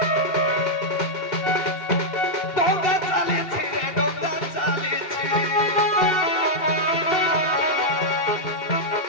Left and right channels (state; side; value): late; right; 2.7 ms